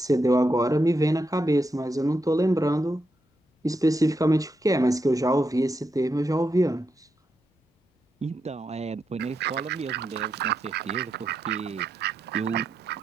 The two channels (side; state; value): both; normal; correlation 0.84